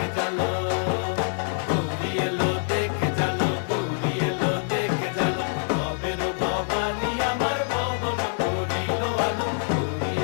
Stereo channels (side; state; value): right; silent; digital silence